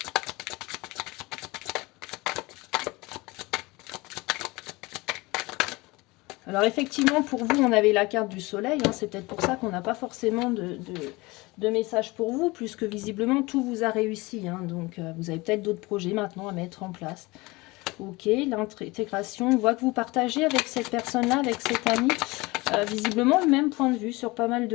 Alors effectivement, pour vous, on avait la carte du soleil. Hein, c'est peut-être pour ça qu'on n'a pas forcément de message pour vous, puisque visiblement, tout vous a réussi. Hein, donc, vous avez peut-être d'autres projets maintenant à mettre en place. Ok, l'intégration. On voit que vous partagez avec cette personne-là, avec cet ami, visiblement le même point de vue sur pas mal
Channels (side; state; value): right; quieter; 22.9 dB